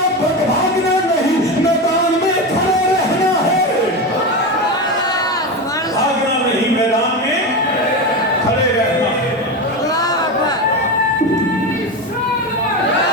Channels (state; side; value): normal; both; correlation 0.19